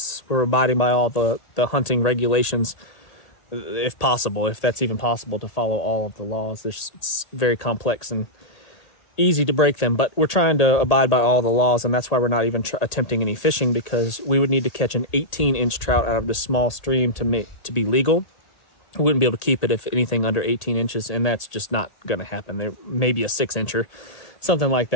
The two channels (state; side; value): late; right; 1.8 ms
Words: We're abiding by all the hunting regulations, if possible, if that's even possible to follow all of the laws. It's very complex and easy to break them, but we're trying to abide by all the laws, and that's why we're not even attempting any fishing, because we would need to catch an 18-inch trout out of this small stream to be legal. We wouldn't be able to keep it if anything under 18 inches, and that's just not going to happen. There may be a 6-incher, something like